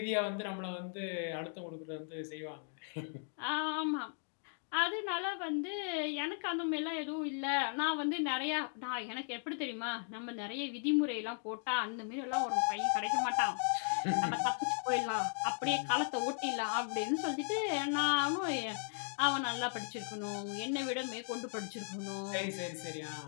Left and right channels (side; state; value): right; silent; 53 dB below the other